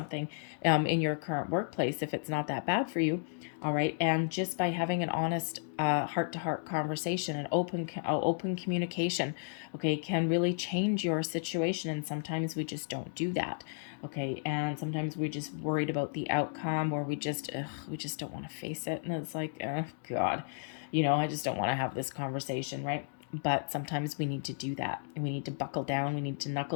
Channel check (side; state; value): right; silent; digital silence